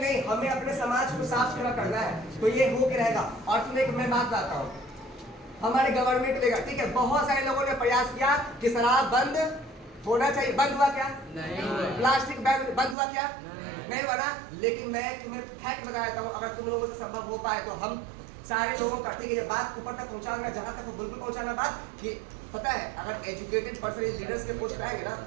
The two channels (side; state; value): left; drops out; at 13.0 s